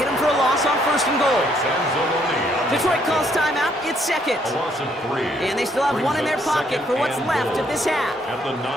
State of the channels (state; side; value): normal; both; correlation 0.69